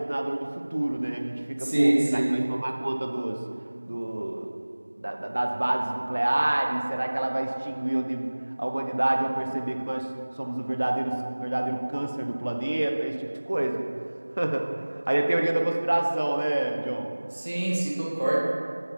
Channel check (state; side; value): inverted; both; correlation -1.00